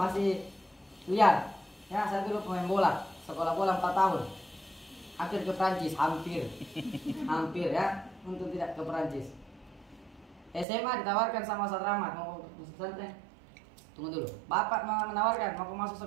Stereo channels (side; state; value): left; drops out; at 10.7 s